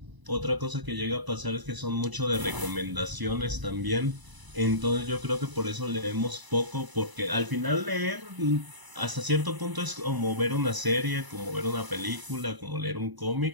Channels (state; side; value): late; left; 1.0 ms